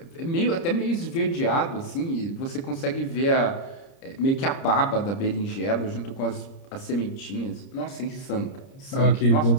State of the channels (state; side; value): late; right; 30 ms